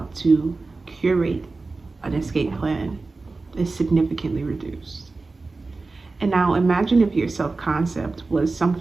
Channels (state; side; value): quieter; left; 3.7 dB